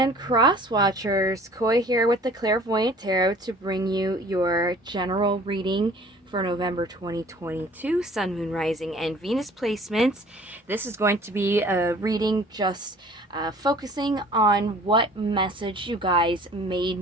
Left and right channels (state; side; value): normal; both; correlation 0.50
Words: Cross Watchers. Koi here with the Clairvoyant Tarot to bring you your general reading for November 2022, Sun, Moon, Rising, and Venus placements. This is going to be a reading just focusing on what message you guys may